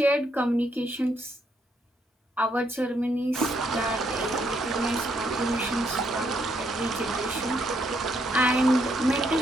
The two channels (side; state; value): both; normal; correlation 0.74